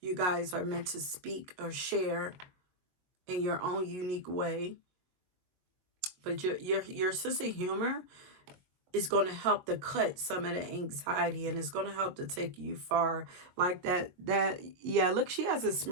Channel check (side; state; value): left; late; 22 ms